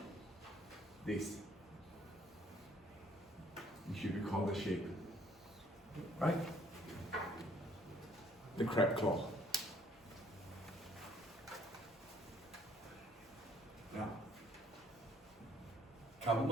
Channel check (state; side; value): normal; both; correlation 0.62